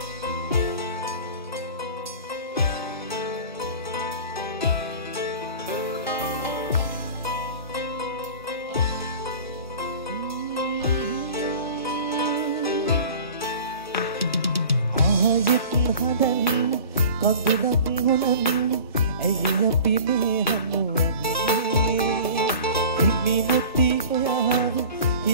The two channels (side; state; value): both; inverted; correlation -0.41